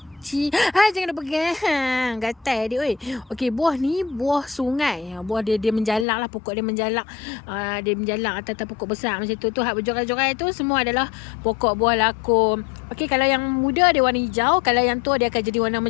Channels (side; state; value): right; drops out; at 6.1 s